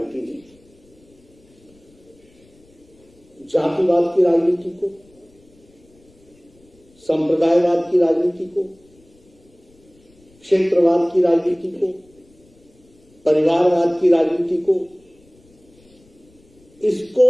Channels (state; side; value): noise; left; rumble, 30 dB below the sound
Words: ने जातिवाद की राजनीति को, संप्रदायवाद की राजनीति को, क्षेत्रवाद की राजनीति को, परिवारवाद की राजनीति को, इसको